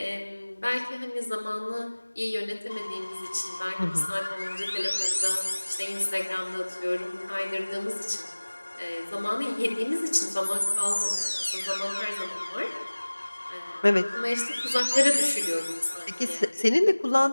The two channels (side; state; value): both; inverted; correlation -1.00